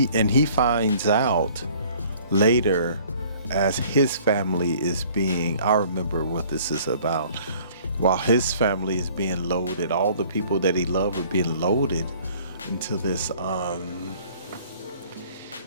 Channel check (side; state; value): both; inverted; correlation -0.54